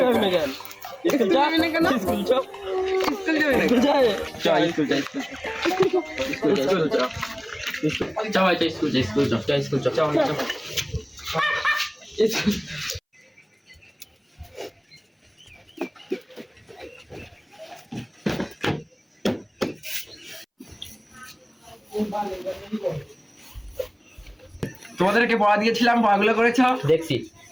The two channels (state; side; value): identical; both; correlation 1.00